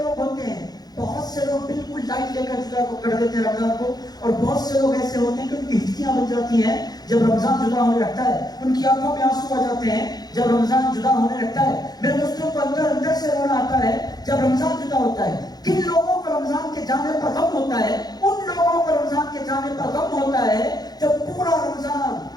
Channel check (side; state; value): right; late; 0.19 ms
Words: ہوتے ہیں۔ بہت سے لوگ بالکل لائٹ لے کر جدا کو کر دیتے ہیں رمضان کو، اور بہت سے لوگ ایسے ہوتے ہیں کہ ان کی ہچکیاں بن جاتی ہیں جب رمضان جدا ہونے لگتا ہے، ان کی آنکھوں میں آنسو آ جاتے ہیں جب رمضان جدا ہونے لگتا ہے۔ میرے دوستوں کو اندر سے رونا آتا ہے جب رمضان جدا ہوتا ہے۔ کن لوگوں کو رمضان کے جانے پر غم ہوتا ہے؟ ان لوگوں کو رمضان کے جانے پر غم ہوتا ہے جب پورا رمضان